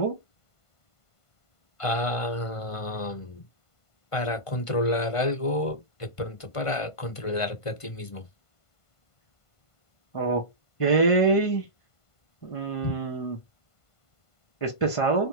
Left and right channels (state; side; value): late; right; 1.5 ms